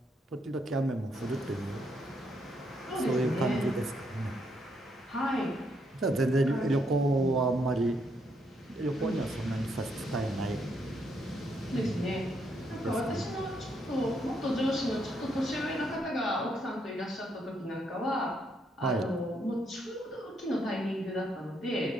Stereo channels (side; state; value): both; normal; correlation 0.75